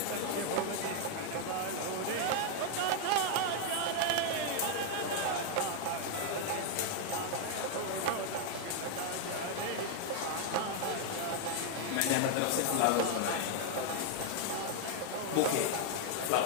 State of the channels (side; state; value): both; different; correlation 0.00